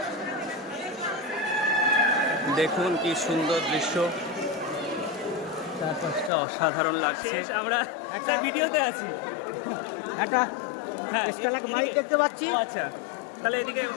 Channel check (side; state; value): right; drops out; at 6.3 s